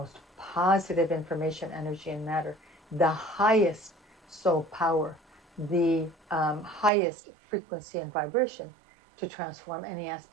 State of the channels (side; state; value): left; drops out; at 6.9 s